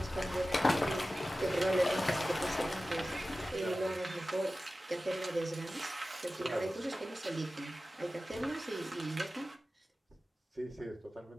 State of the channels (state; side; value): normal; both; correlation 0.95